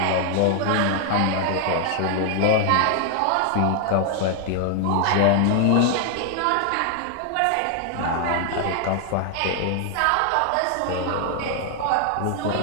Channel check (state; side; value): different; both; correlation 0.00